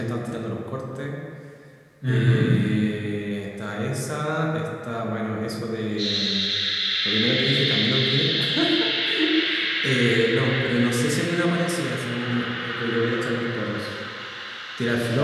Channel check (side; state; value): both; identical; correlation 1.00